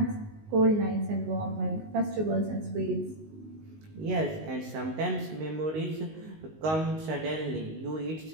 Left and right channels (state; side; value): late; left; 19 ms